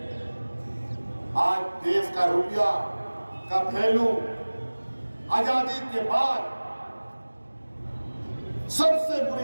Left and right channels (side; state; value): both; inverted; correlation -1.00